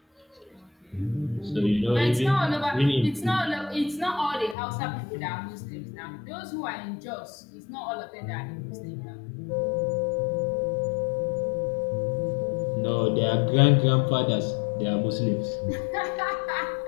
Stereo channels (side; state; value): right; drops out; at 4.5 s